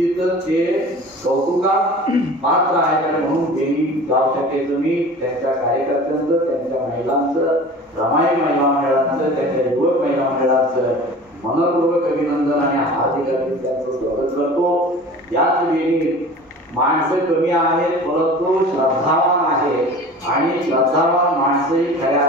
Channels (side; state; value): both; normal; correlation 0.40